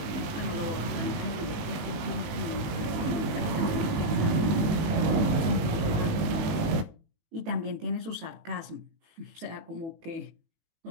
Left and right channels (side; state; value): left; late; 19 ms